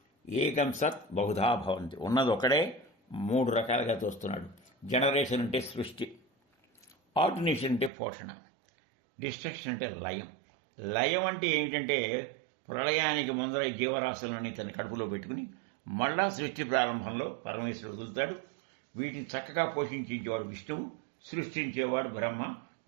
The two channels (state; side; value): drops out; left; at 7.9 s